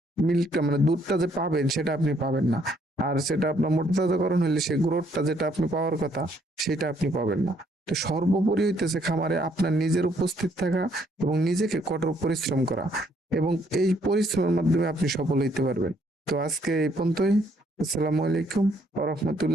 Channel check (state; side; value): normal; both; correlation 0.68